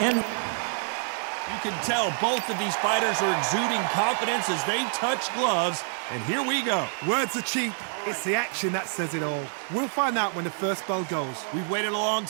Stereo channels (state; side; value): silent; left; 55 dB below the other